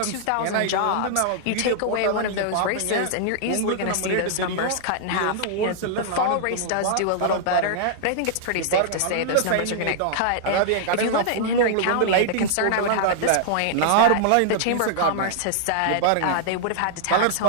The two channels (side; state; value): both; different; correlation -0.01